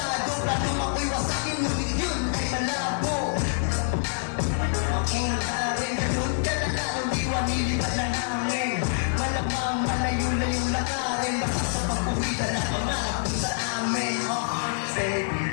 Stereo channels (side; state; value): right; silent; digital silence